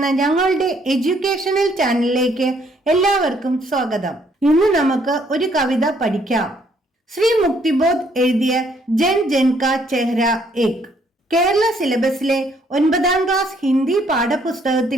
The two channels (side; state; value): both; normal; correlation 0.67